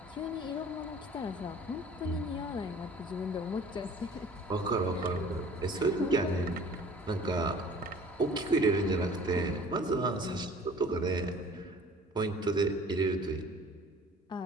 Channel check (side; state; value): both; normal; correlation 0.48